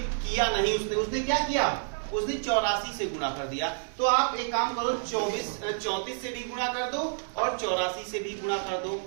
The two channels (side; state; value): left; silent; digital silence